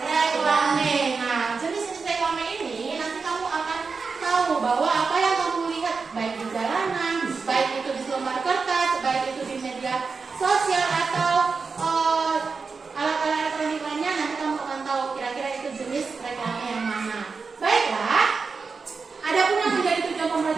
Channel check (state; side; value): quieter; left; 4.8 dB